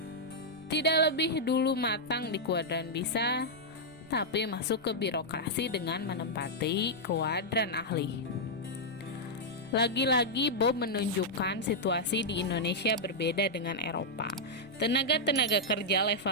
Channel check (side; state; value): right; noise; rumble, 25 dB below the sound